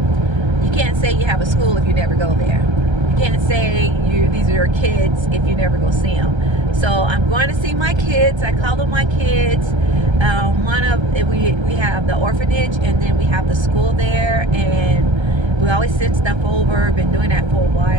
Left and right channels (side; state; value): left; late; 1.3 ms